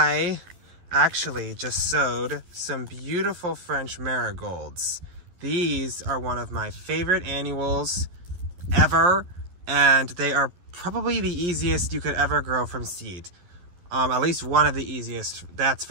actually just sowed some beautiful French marigolds. These are one of my favorite annuals ever, and they are probably the easiest you could ever grow from seed. At least one of the easiest, that's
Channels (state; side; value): late; left; 11 ms